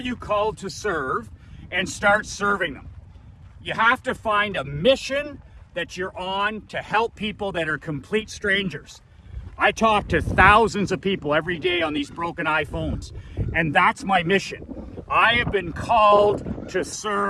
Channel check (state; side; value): identical; both; correlation 1.00